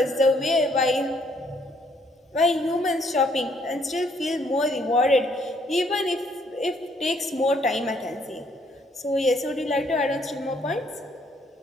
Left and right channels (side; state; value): both; normal; correlation 0.67